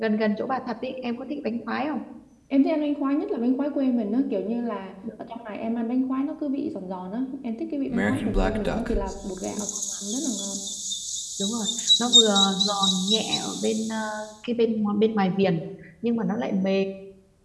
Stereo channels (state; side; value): identical; both; correlation 1.00